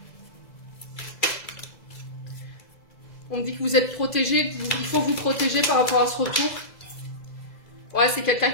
On me dit que vous êtes protégé, il faut vous protéger par rapport à ce retour. Ouais, c'est quelqu'un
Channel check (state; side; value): late; right; 2.0 ms